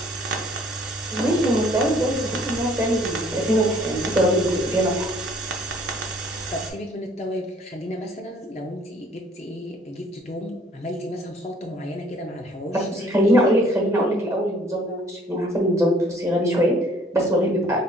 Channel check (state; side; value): normal; both; correlation 0.58